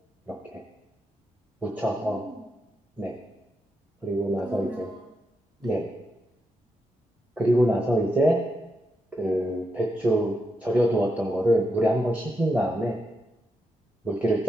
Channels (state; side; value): normal; both; correlation 0.84